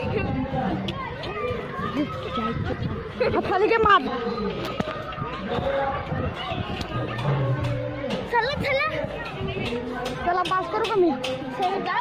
खाली मार. चला चला चला पास करू का मी.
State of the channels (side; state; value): both; identical; correlation 1.00